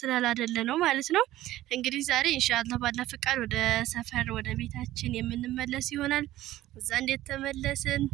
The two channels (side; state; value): left; quieter; 15.0 dB